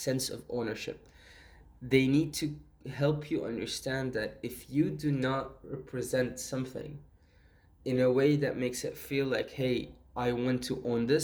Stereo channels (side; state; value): both; identical; correlation 1.00